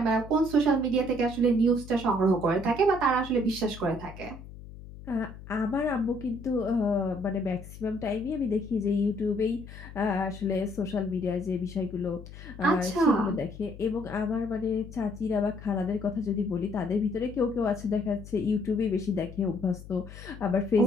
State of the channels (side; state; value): left; noise; hum, 15 dB below the sound